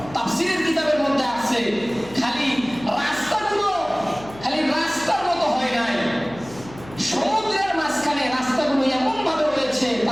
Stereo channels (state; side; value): noise; left; hum, 18 dB below the sound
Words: তাফসীরের কিতাবের মধ্যে আছে খালি রাস্তার মতো হয় নাই, সমুদ্রের মাঝখানে রাস্তাগুলো এমন ভাবে হয়েছে,